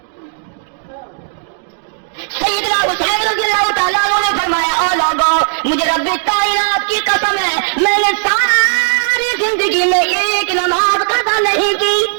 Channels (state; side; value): silent; left; digital silence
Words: سیدنا حسین رضی اللہ تعالیٰ عنہ نے فرمایا، او لوگوں مجھے رب کائنات کی قسم ہے میں نے ساری زندگی میں ایک نماز قضا نہیں کی۔